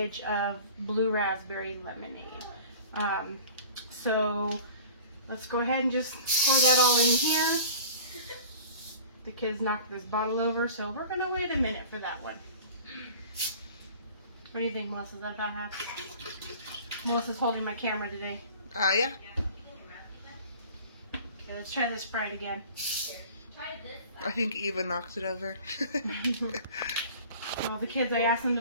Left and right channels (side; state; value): both; inverted; correlation -0.43